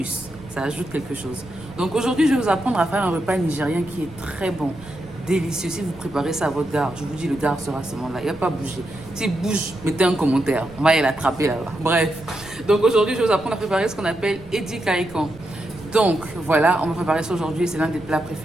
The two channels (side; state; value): right; noise; rumble, 20 dB below the sound